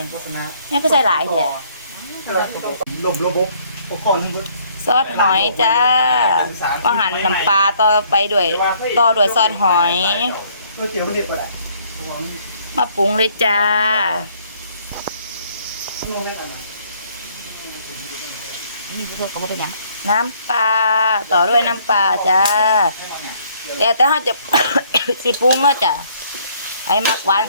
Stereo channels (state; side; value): inverted; both; correlation -0.64